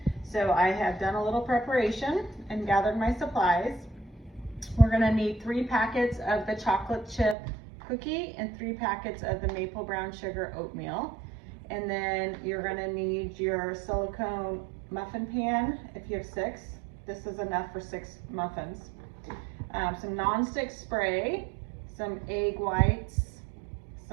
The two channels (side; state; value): left; drops out; at 7.4 s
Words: So I have done a little preparation and gathered my supplies. We're going to need 3 packets of the chocolate chip cookie and 3 packets of the maple brown sugar oatmeal. And then you're gonna need your silicone muffin pan if you have 6. This is enough for 6 muffins. Some nonstick spray, some egg whites,